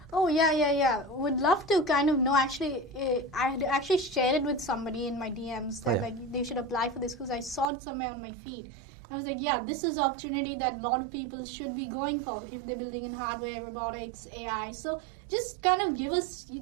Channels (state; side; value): drops out; left; at 7.7 s